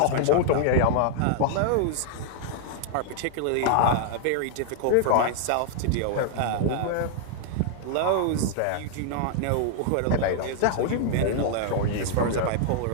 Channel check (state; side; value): different; both; correlation -0.01